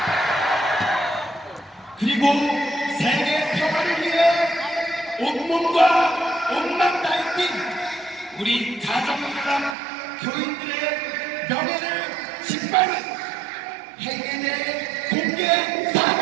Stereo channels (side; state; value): left; drops out; at 9.8 s